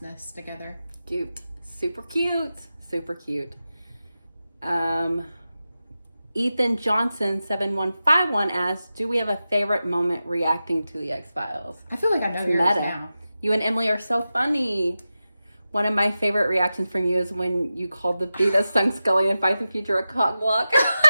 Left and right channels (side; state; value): both; inverted; correlation -0.93